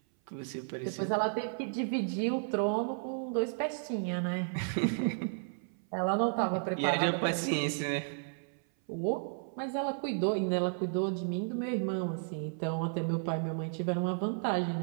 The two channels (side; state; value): left; silent; 56 dB below the other